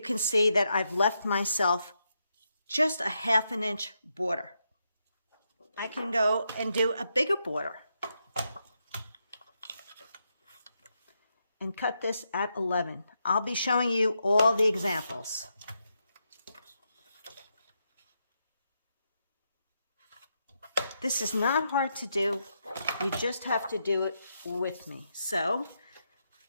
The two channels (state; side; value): inverted; both; correlation -0.82